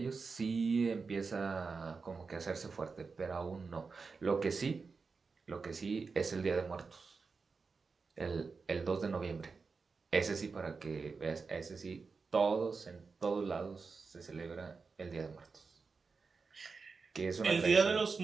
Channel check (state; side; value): quieter; left; 4.7 dB